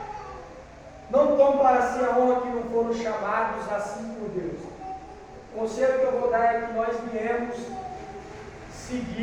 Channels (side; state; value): both; identical; correlation 1.00